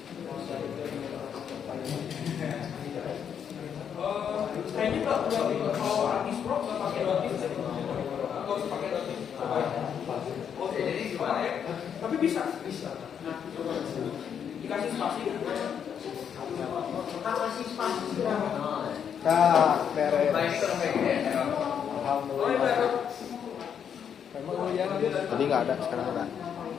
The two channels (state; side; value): quieter; right; 8.0 dB